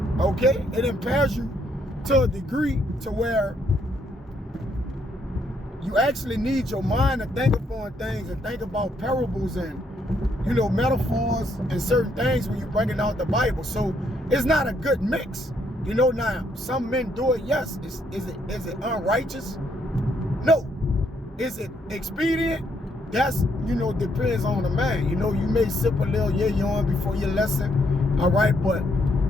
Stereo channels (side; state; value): both; normal; correlation 0.72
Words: okay? It impairs you to a degree to where you actually need your mind to think upon things and think about parables and, you know, metaphors and certain things when you're bringing out the Bible. So it's not a good mix. You know, now, some men do it, yes. Is it unrighteous? No. Is it expedient? That's, you know, depends on the man. You know, you may sip a little yayon before your lesson, all right? But,